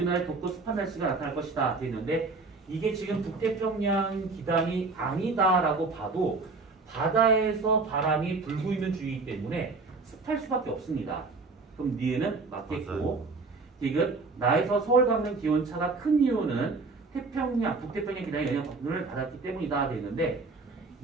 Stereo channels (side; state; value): left; quieter; 3.9 dB